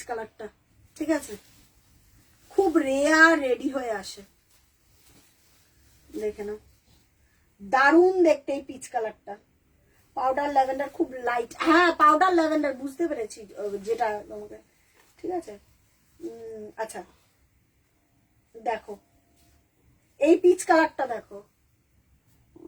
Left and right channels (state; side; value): identical; both; correlation 1.00